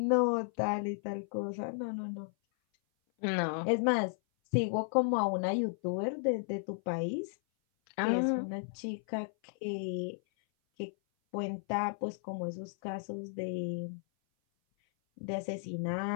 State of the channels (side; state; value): right; silent; 55 dB below the other